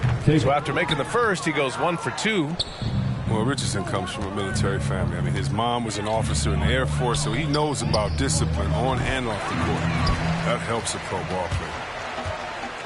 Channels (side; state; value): both; identical; correlation 1.00